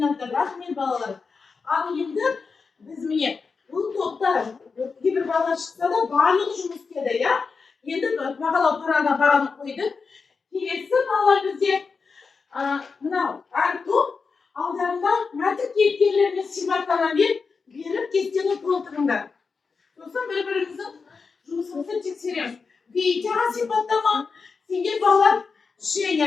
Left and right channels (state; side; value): quieter; right; 4.9 dB